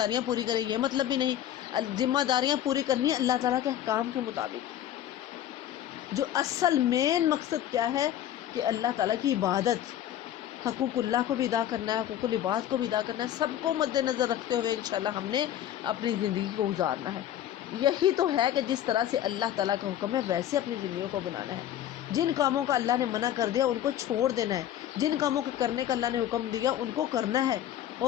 پوری کرے، یہ مطلب بھی نہیں۔ ذمہ داریاں پوری کرنی ہے اللہ تعالیٰ کے احکام کے مطابق۔ جو اصل مین مقصد کیا ہے کہ اللہ تعالیٰ کی عبادت، حقوق اللہ کو بھی ادا کرنا ہے، حقوق العباد کو بھی ادا کرنا ہے، سب کو مد نظر رکھتے ہوئے انشاءاللہ ہم نے اپنی زندگی کو گزارنا ہے۔ یہی تو ہے کہ جس طرح سے اللہ تعالیٰ کا حکم ہے ویسے اپنی زندگیوں کو بنانا ہے۔ جن کاموں کا اللہ نے منع کر دیا ان کو چھوڑ دینا ہے، جن کاموں کے کرنے کا اللہ نے حکم دیا ان کو کرنا ہے،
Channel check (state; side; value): quieter; right; 11.4 dB